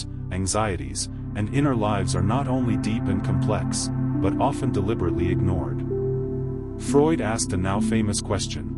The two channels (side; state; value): both; identical; correlation 1.00